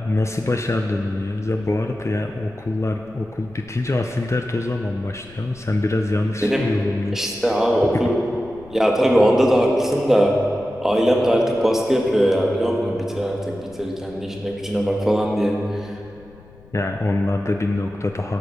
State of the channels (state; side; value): noise; left; rumble, 23 dB below the sound